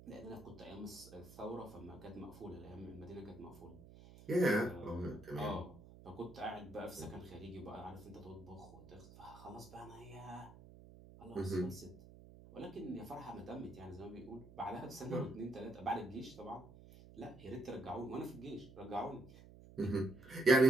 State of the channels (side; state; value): right; noise; hum, 18 dB below the sound